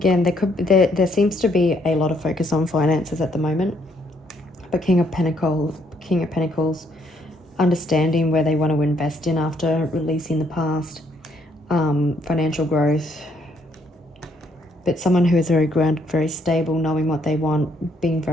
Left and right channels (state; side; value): normal; both; correlation 0.70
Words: there seems to be a lot of focus on finances at the moment. But King of Pentacles, understanding where they want to invest in after releasing the past, financial growth. But someone who is very grounded, very stable, knowing what they want, being